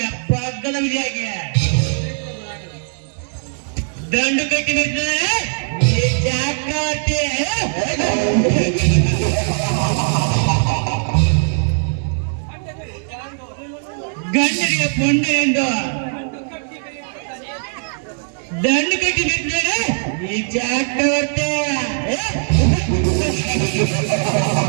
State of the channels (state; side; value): silent; left; 60 dB below the other